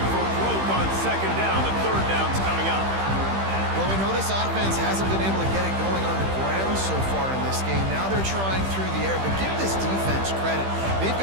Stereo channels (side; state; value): left; late; 15 ms